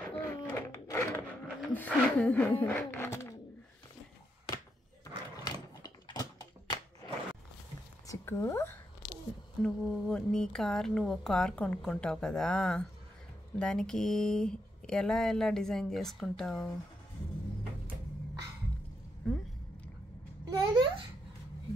చిక్కు, నువ్వు కార్ కొనుక్కుంటావు కదా, దానికి ఎలా డిజైన్ చేసుకుంటావు? నేను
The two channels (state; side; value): normal; both; correlation 0.81